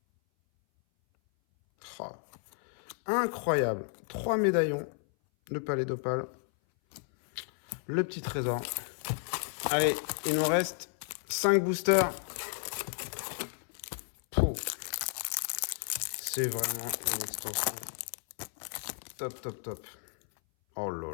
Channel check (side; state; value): right; silent; 56 dB below the other